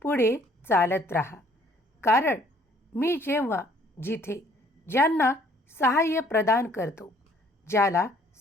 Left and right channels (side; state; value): both; normal; correlation 0.60